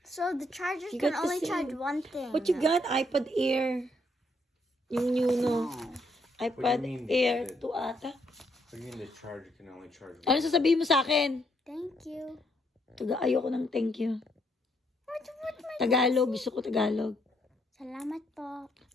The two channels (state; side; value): normal; both; correlation 0.73